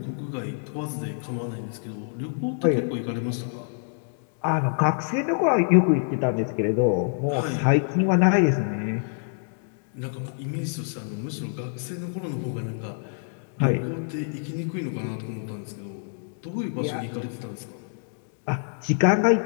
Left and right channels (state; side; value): silent; right; digital silence